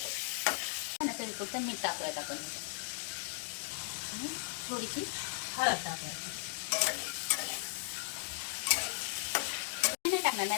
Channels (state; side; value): silent; right; digital silence